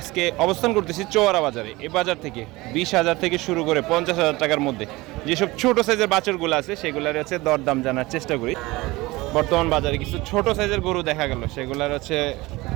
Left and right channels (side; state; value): left; quieter; 21.0 dB